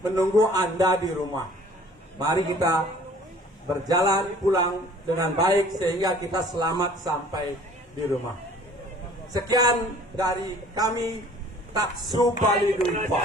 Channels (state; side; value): normal; both; correlation 0.52